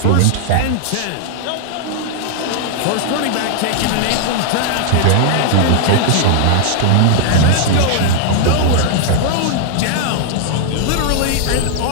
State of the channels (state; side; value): different; both; correlation -0.01